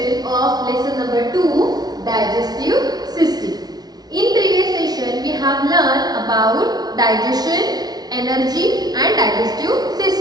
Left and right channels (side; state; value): left; late; 0.19 ms